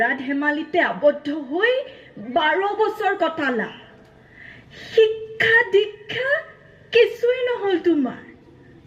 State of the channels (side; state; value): both; identical; correlation 1.00